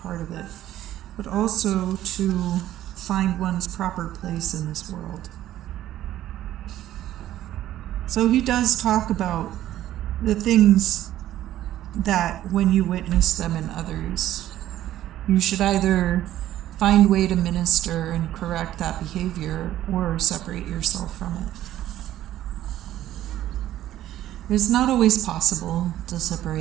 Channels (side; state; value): left; quieter; 13.2 dB